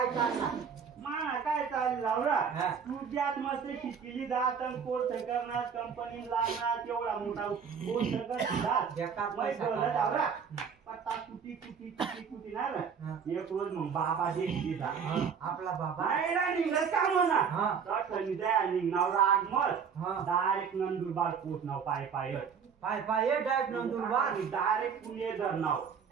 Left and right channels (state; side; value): quieter; left; 6.7 dB